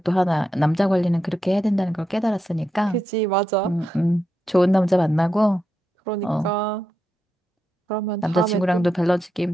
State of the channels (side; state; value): both; normal; correlation 0.85